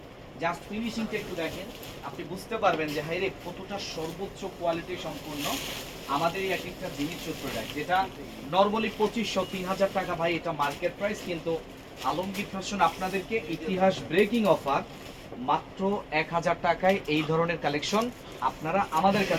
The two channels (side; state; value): both; identical; correlation 1.00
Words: জাস্ট ফিনিশিংটা একটু দেখেন, আপনি বুঝতে পারবেন যে হাইরে কতটা সর্বোচ্চ কোয়ালিটি সম্পূর্ণ আমাদের এই একটা জিমিচু প্রোডাক্ট, যেটা নরমালি 2500-3000 টাকা ভাই এটা মার্কেট প্রাইস, কিন্তু আলমগীর ফ্যাশন আপনাদেরকে ইতিহাস ব্রেকিং অফার মাত্র 1000 টাকায় এই ধরনের কালেকশন আপনারা আমাদের